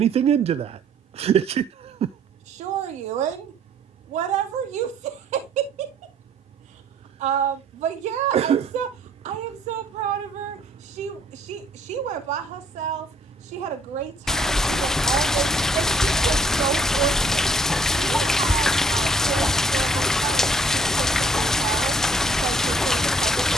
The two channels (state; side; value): normal; both; correlation 0.61